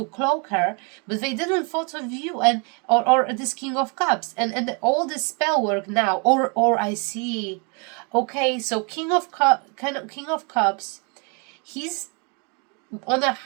cloak her, but they didn't thought of you and or this King of Cups and all this spell work now. Or I see. Okay, so King of Cups, he's on a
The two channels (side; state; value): left; quieter; 34.7 dB